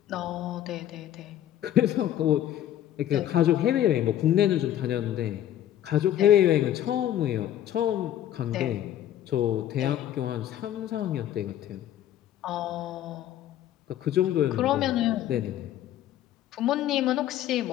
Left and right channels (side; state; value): right; quieter; 11.8 dB